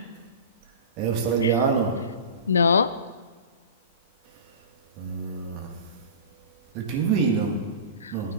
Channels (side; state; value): both; inverted; correlation -0.33